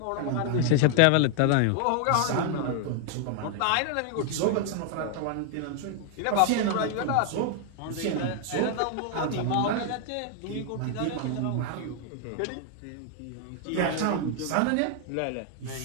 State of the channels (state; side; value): different; both; correlation 0.00